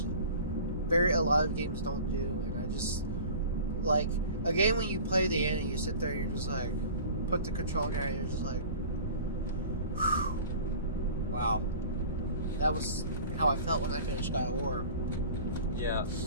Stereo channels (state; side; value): inverted; both; correlation -0.41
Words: a lot of games don't do. And I just, like, a game when you play the end and you sit there and you're just like, put the control down and you're just like, whew, wow. That was how I felt when I finished God of War. Yeah,